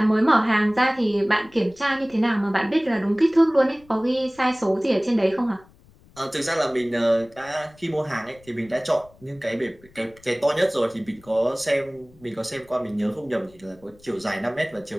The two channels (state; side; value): noise; left; rumble, 27 dB below the sound